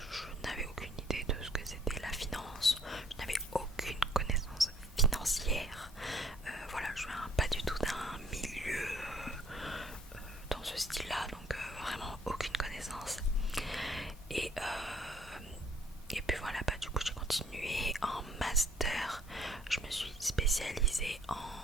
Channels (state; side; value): normal; both; correlation 0.60